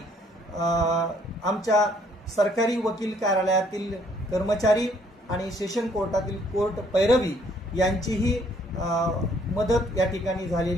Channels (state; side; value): normal; both; correlation 0.64